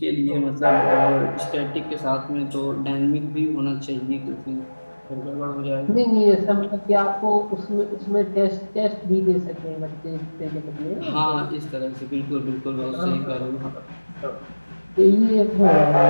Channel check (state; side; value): inverted; both; correlation -1.00